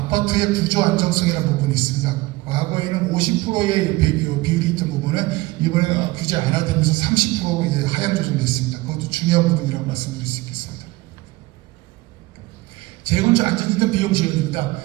구조 안정성이라는 부분이 있습니다. 과거에는 50%의 비율이 있던 부분은 이번에 규제 안 하면서 30% 이제 하향 조정됐습니다. 그것도 중요한 부분이라고 말씀드릴 수 있겠습니다. 재건축 안전진단 비용 지원입니다.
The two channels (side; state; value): left; quieter; 20.5 dB